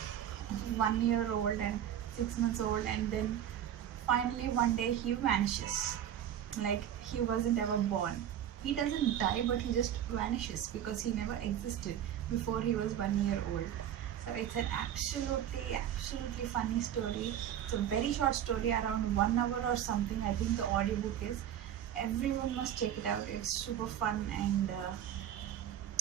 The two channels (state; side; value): quieter; left; 10.4 dB